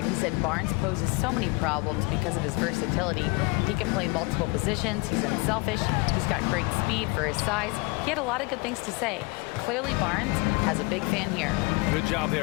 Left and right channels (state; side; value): quieter; right; 25.5 dB